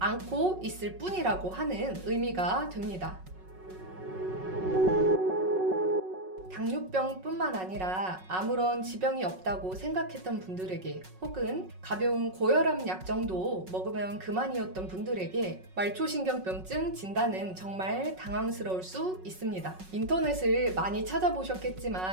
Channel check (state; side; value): late; left; 5.4 ms